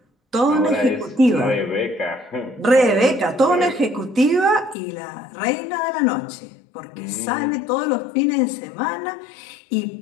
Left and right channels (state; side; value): drops out; right; at 4.8 s